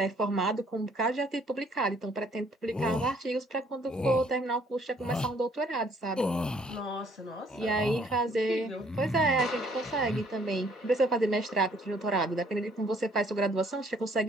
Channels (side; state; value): both; normal; correlation 0.63